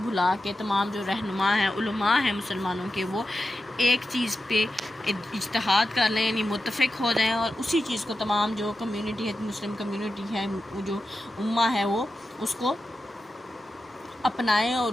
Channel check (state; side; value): normal; both; correlation 0.91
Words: بھلا کے تمام جو رہنما ہیں، علماء ہیں مسلمانوں کے، وہ ایک چیز پہ اجتہاد کر لیں، یعنی متفق ہو جائیں اور اسی چیز کو تمام جو کمیونٹی ہے، مسلم کمیونٹی ہے، جو امہ ہے وہ اس کو اپنائیں اور